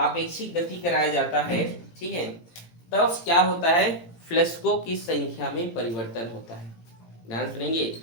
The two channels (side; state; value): right; late; 18 ms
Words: गति कराया जाता है। ठीक है, तब क्या होता है, फ्लक्सों की संख्या में परिवर्तन होता है। ध्यान सुनेंगे,